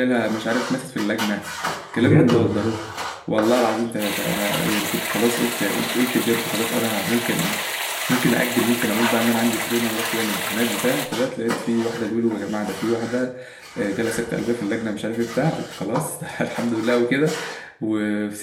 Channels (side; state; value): both; identical; correlation 1.00